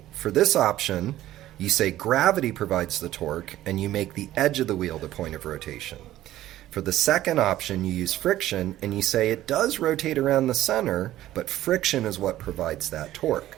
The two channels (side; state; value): left; quieter; 14.2 dB